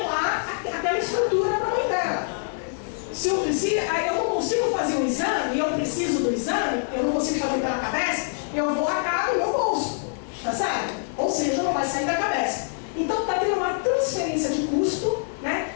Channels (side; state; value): right; silent; digital silence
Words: aquela estrutura para a mãe dela. Se eu não consigo fazer um exame, e eu preciso do exame, eu não consigo fazer pela Cabesp, eu vou arcar no meu bolso, tá certo? Ou seja, não vai sair da Cabesp. Então está tendo uma transferência de custo, né,